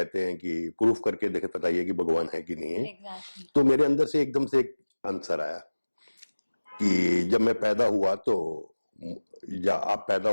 हैं कि प्रूफ करके देखे, बताइए कि भगवान है कि नहीं है। एग्जैक्टली। तो मेरे अंदर से एकदम से एक आंसर आया कि जब मैं पैदा हुआ तो, या आप पैदा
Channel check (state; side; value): inverted; both; correlation -1.00